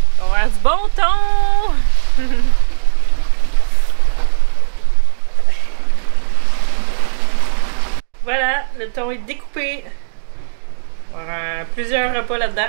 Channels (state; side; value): silent; left; digital silence